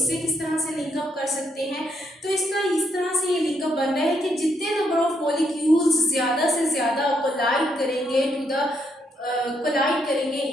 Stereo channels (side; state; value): both; normal; correlation 0.75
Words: किस तरह से लिंकअप कर सकते हैं। तो इसका इस तरह से ये लिंकअप बन रहा है कि जितने नंबर ऑफ मॉलिक्यूल्स ज़्यादा से ज़्यादा कोलाइड करेंगे इन